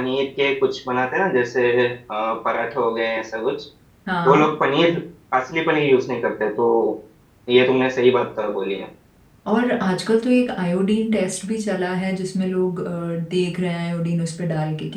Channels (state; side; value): identical; both; correlation 1.00